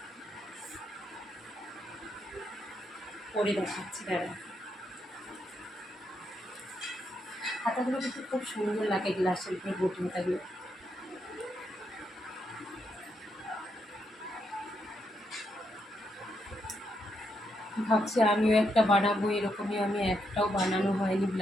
পরে দেখাচ্ছি দাঁড়া। হাতাগুলো কিন্তু খুব সুন্দর লাগে গ্লাসের উপরে ঘটি হাতাগুলো। ভাবছি আমিও একটা বানাবো, এরকমই আমি একটাও বানানো হয়নি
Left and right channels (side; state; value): both; normal; correlation 0.80